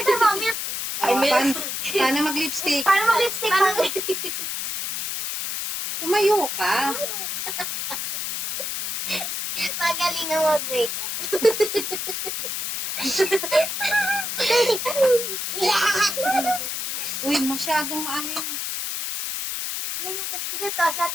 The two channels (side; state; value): left; noise; hiss, 3 dB below the sound